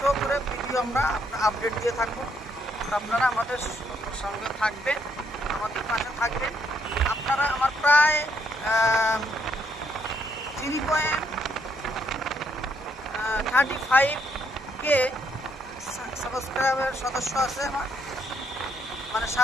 করে ভিডিও আমরা আপডেট দিয়ে থাকবো। আপনারা আমাদের সঙ্গে থাকবেন, আমাদের পাশে থাকবেন। আপনারা আমার প্রায় 3.35K সাবস্ক্রাইবার সদস্য আছে আমার, মানে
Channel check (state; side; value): normal; both; correlation 0.73